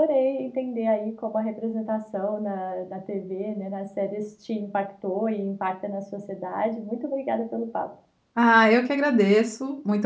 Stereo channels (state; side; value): identical; both; correlation 1.00